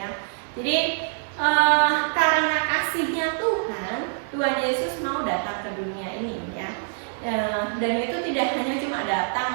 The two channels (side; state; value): left; silent; digital silence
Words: Jadi karena kasihnya Tuhan Yesus mau datang ke dunia ini ya. Dan itu tidak hanya cuma